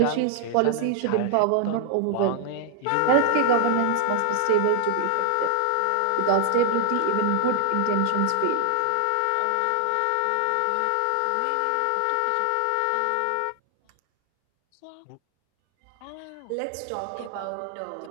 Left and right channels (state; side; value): different; both; correlation 0.00